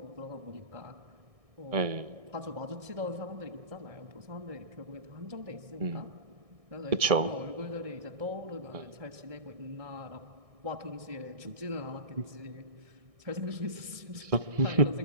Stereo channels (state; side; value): late; left; 1.6 ms